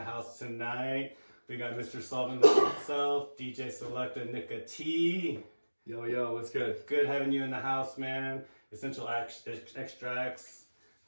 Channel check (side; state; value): both; inverted; correlation -1.00